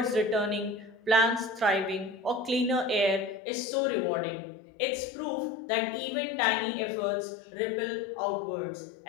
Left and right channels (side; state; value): right; drops out; at 3.4 s